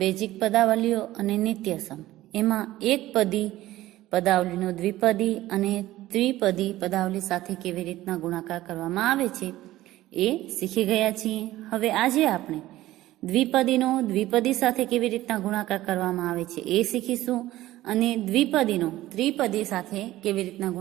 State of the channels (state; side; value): quieter; left; 15.8 dB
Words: પદાવલીઓ અને નિત્યસમ એમાં એકપદી પદાવલીનો દ્વિપદી અને ત્રિપદી પદાવલી સાથે કેવી રીતના ગુણાકાર કરવામાં આવે છે એ શીખી ગયા છીએ. હવે આજે આપણે દ્વિપદીનો દ્વિપદી સાથે કેવી રીતના ગુણાકાર કરવામાં આવે છે એ શીખીશું અને દ્વિપદીનો ત્રિપદી સાથે કેવી રીતના